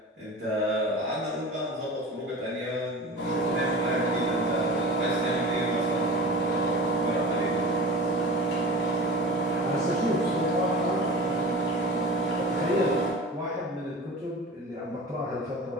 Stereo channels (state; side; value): normal; both; correlation 0.34